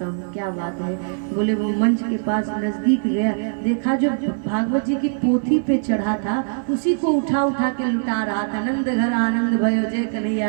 हूँ क्या बात है। बोले वो मंच के पास नजदीक गया, देखा जो भागवत जी की पोथी पे चढ़ा था उसी को उठा उठा के लुटा रहा था। नंद घर आनंद भयो जय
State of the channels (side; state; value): left; silent; digital silence